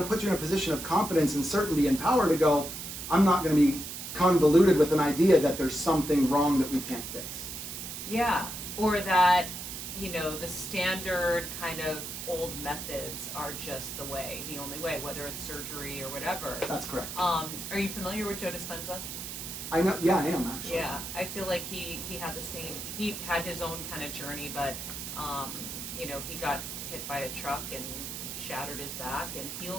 it puts you in a position of confidence and certainty and power to go, I'm not going to be convoluted with an idea that there's something wrong that we can't fix. Yeah. Or that, the standard kind of old methods are just the only way, whether it's surgery or whatever. That's correct. Are you familiar with Joe Dispenza? I know. Yeah, I am actually. Yeah, I feel like he had the same. He had his own kind of journey, but you know, he got hit by a truck and shattered his back and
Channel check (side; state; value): right; noise; hiss, 7 dB below the sound